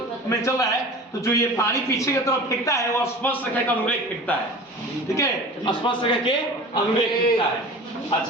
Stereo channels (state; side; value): normal; both; correlation 0.38